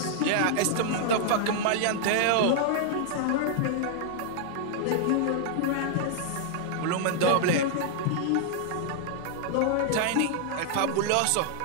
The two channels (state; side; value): different; both; correlation -0.01